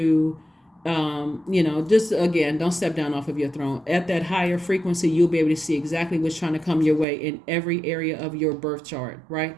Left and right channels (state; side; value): drops out; left; at 7.1 s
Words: just again, don't step down off of your throne. At that higher frequency, you'll be able to see exactly what's trying to come your way in every area of your birth chart, right?